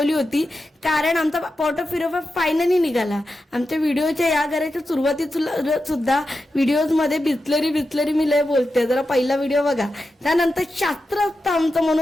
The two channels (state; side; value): normal; both; correlation 0.90